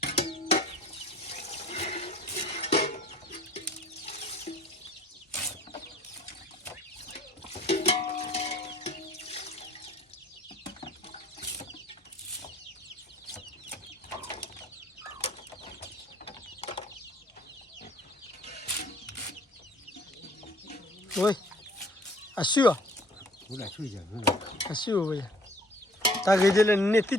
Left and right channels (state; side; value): normal; both; correlation 0.53